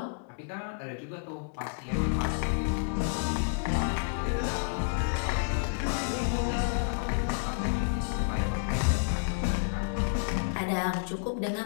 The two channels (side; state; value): right; silent; digital silence